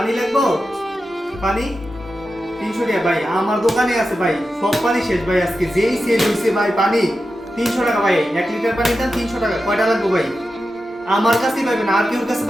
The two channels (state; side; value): normal; both; correlation 0.91